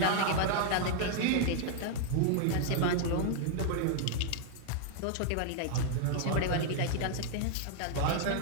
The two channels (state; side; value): different; both; correlation 0.00